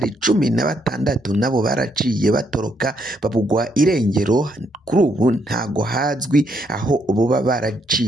16 nabo baraciye batoroka babugwa irengero. Kuri ubu ntago hazwi aho boba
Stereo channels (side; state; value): both; normal; correlation 0.74